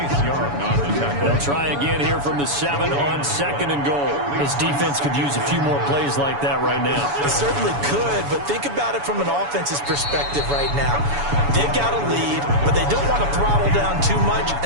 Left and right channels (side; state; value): left; late; 7.0 ms